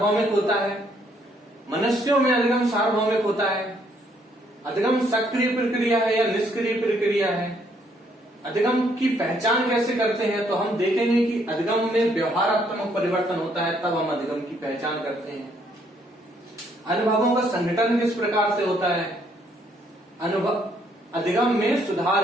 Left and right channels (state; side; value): normal; both; correlation 0.69